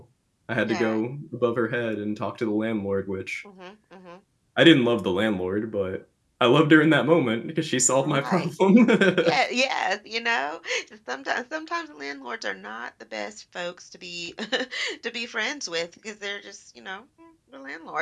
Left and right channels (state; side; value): identical; both; correlation 1.00